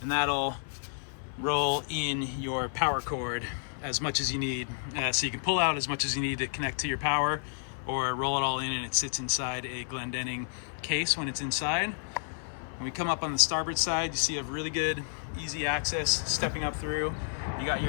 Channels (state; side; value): silent; right; 57 dB below the other